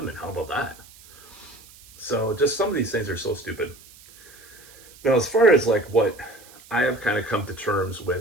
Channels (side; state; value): right; noise; hiss, 23 dB below the sound